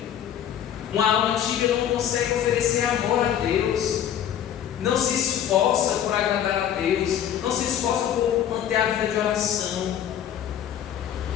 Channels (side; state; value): right; quieter; 9.9 dB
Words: Uma alma tíbia não consegue oferecer amor a Deus, não se esforça por agradar a Deus, não se esforça por manter a vida de oração.